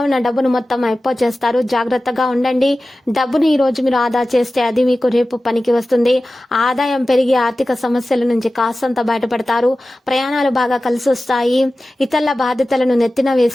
ఉన్న డబ్బును మొత్తం అయిపో చేస్తారు. జాగ్రత్తగా ఉండండి. డబ్బును ఈ రోజు మీరు ఆదా చేస్తే అది మీకు రేపు పనికి వస్తుంది. ఆదాయం పెరిగి ఆర్థిక సమస్యల నుంచి కాస్తంత బయటపడతారు. ప్రయాణాలు బాగా కలిసి వస్తాయి. ఇతరుల బాధ్యతలను నెత్తిన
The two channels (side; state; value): both; normal; correlation 0.96